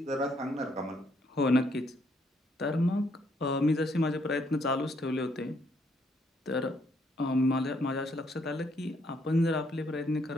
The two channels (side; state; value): both; normal; correlation 0.71